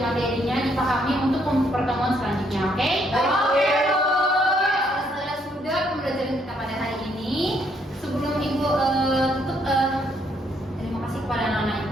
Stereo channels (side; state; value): both; normal; correlation 0.71